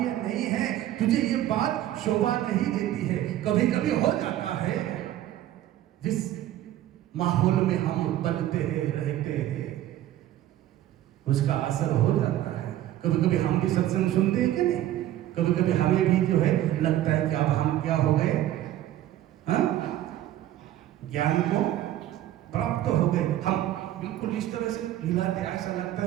नहीं है, तुझे ये बात शोभा नहीं देती है। कभी कभी हो जाता है, जिस माहौल में हम बनते हैं, रहते हैं, उसका असर हो जाता है। कभी कभी हम भी सत्संग सुनते हैं कि नहीं, कभी कभी हमें भी जो है लगता है कि अब हम क्या हो गए, ज्ञान को प्राप्त हो गए, हम बिल्कुल इस तरह से हिलाते, ऐसा लगता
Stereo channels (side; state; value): left; quieter; 13.2 dB